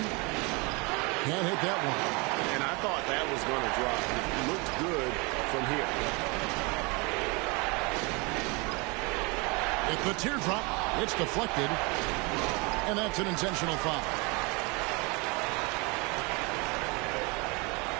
Can't hit that one. And I thought that was going to drop. It looked good from here. It's the teardrop. It's deflected. And that's an intentional foul.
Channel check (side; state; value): left; quieter; 28.6 dB